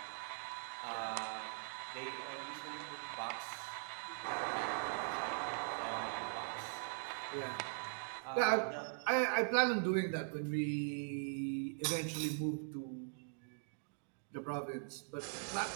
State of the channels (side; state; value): left; silent; digital silence